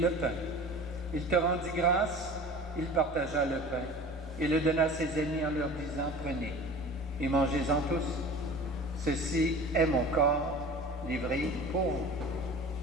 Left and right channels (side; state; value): both; normal; correlation 0.39